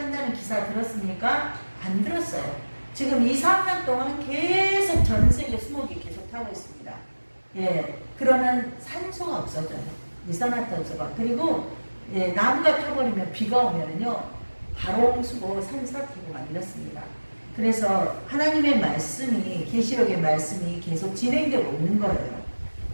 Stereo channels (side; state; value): both; inverted; correlation -1.00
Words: 기사 들었습니까? 안 들었어요. 지금 2, 3년 동안 계속 전 세계 수목이 계속 타고 있습니다. 그러면 산소가 없어져요. 이산화탄소가. 그리고 나무가 타버리면 비가 오면은요, 바롱수고 산사태고 만들었습니다. 그래서 하나님의 말씀이, 계시록의 말씀이 계속 진행되고 있는 거예요.